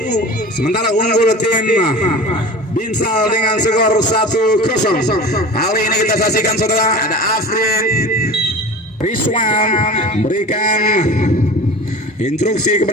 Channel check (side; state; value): both; normal; correlation 0.36